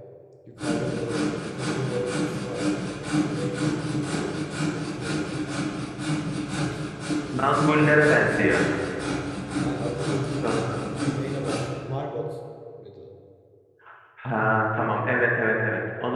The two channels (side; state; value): both; identical; correlation 1.00